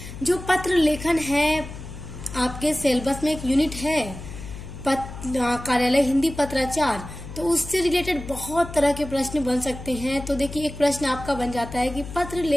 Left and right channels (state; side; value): noise; left; hum, 11 dB below the sound